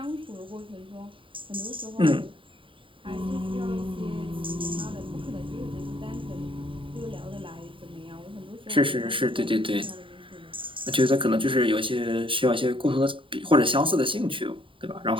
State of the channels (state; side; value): late; left; 0.25 ms